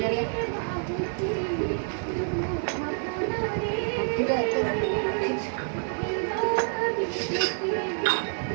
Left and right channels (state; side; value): silent; left; 58 dB below the other